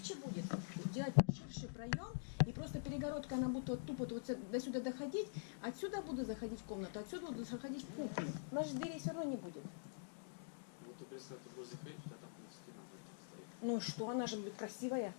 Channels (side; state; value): right; silent; digital silence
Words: будет делать ширший проем, и просто перегородка, она будет вот тупо вот до сюда доходить, отсюда буду заходить в комнату, отсюда буду заходить в кухню. У нас же дверей все равно не будет. Вот ты представь, ты будешь заходить, у тебя там стена будет стоит. Ну и что, она же будет красивая.